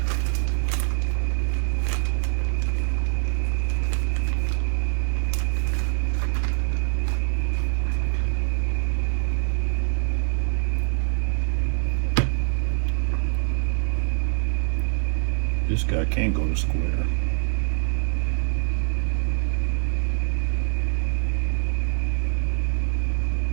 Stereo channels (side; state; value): left; silent; 62 dB below the other